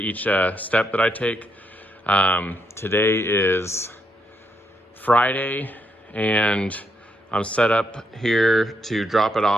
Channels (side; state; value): both; normal; correlation 0.78